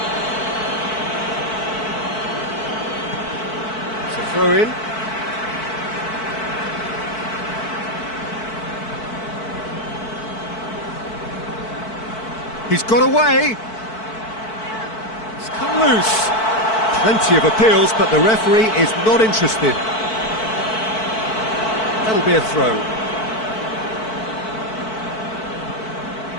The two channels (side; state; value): right; late; 4.5 ms